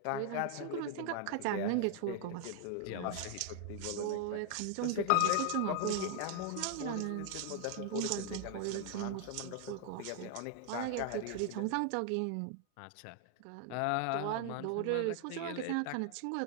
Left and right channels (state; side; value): different; both; correlation 0.00